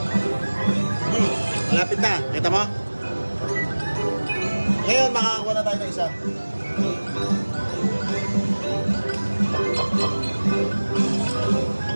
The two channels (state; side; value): inverted; both; correlation -1.00